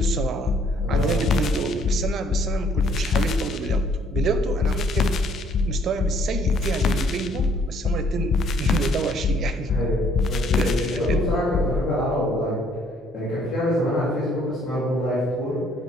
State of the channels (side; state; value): both; normal; correlation 0.63